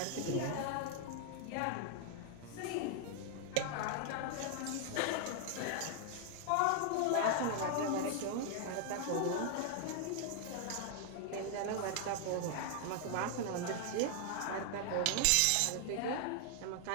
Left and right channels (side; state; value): both; different; correlation 0.00